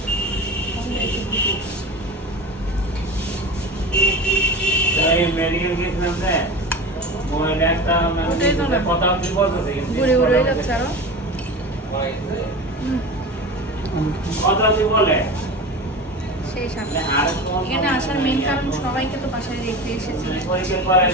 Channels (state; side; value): normal; both; correlation 0.30